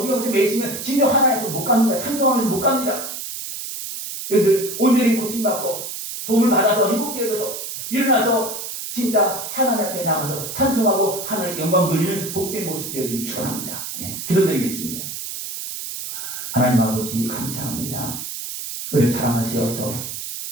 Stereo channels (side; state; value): right; noise; hiss, 7 dB below the sound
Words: 매이시면 진정 하나님 못 갑니다. 산정하면서 못 갑니다. 여러분들 온전히 고침받고 도움을 받아서 회복되어져서 일어나서 진짜 하나님 앞에 나가서 찬송하고 하나님께 영광 돌리는 복된 모습 되어지길 축원합니다. 기도드리겠습니다. 하나님 아버지 감사합니다. 우리를 사랑하시어서